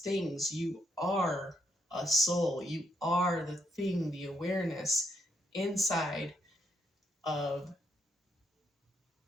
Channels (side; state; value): both; normal; correlation 0.77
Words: things. You are a soul. You are the thing, the awareness inside of